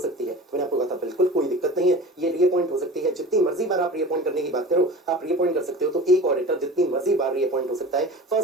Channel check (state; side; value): normal; both; correlation 0.37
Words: है। तो मैंने आपको कहा था बिल्कुल कोई दिक्कत नहीं है, ये रीअपॉइंट हो सकती है। जितनी मर्जी बार आप रीअपॉइंट करने की बात करो, आप रीअपॉइंट कर सकते हो। तो एक ऑडिटर जितनी मर्जी बार रीअपॉइंट हो सकता है,